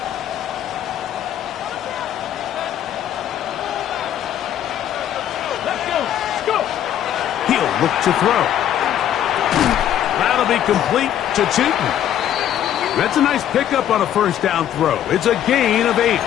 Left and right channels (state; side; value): quieter; right; 10.9 dB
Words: He'll look to throw. That'll be complete to Tootin. That's a nice pickup on a first down throw. It's a gain of 8.